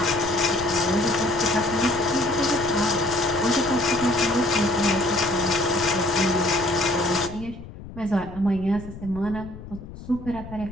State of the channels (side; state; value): left; noise; rumble, 14 dB below the sound